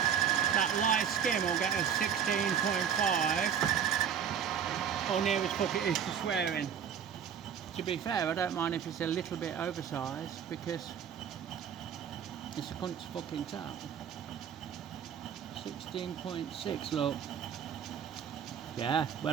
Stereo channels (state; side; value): quieter; left; 8.2 dB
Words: that light skim will get us 16.5, or near as fuck it is to swearing. To be fair, I don't mind if it's a little bit oversized, because it's a cunt's fucking tap. 16.6, look. Yeah,